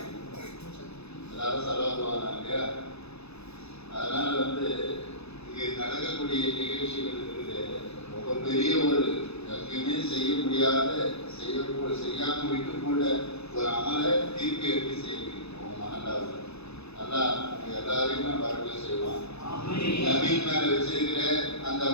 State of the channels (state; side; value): late; right; 0.79 ms